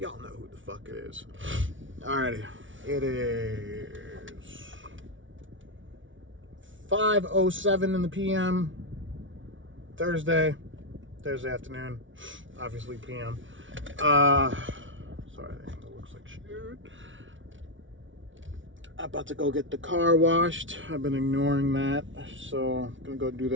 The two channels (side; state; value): left; late; 0.56 ms